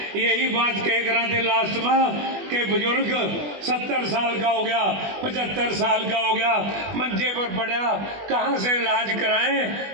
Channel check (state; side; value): late; left; 20 ms